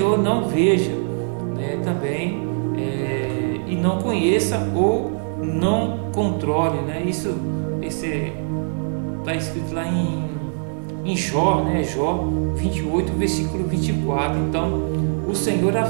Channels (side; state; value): left; silent; 57 dB below the other